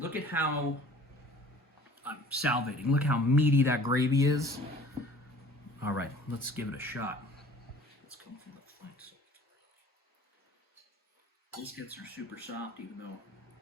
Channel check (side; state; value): both; normal; correlation 0.49